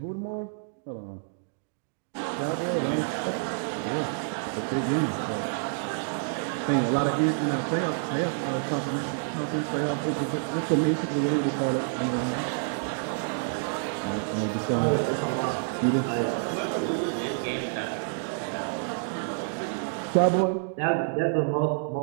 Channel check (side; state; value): left; silent; digital silence